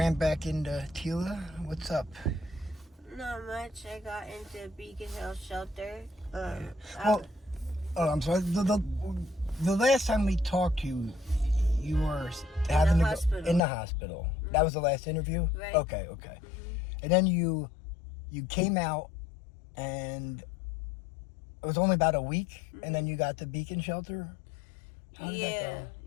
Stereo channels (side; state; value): right; drops out; at 13.6 s